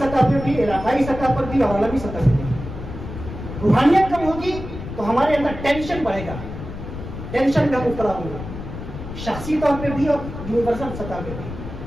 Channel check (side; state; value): left; noise; rumble, 9 dB below the sound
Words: پہ بھی، علاقائی سطح پر بھی اور عالمی سطح پہ بھی. روحانیت کم ہوگی تو ہمارے اندر ٹینشن بڑھے گا، ٹینشن کا مبتلا ہوں گا، شخصی طور پہ بھی اور یونیورسل سطح پہ بھی.